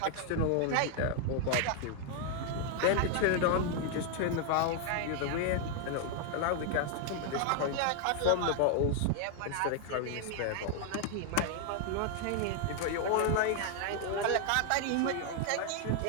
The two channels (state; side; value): different; both; correlation 0.00